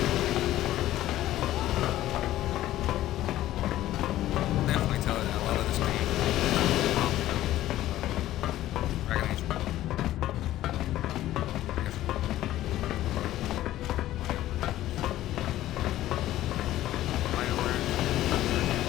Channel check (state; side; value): quieter; right; 14.3 dB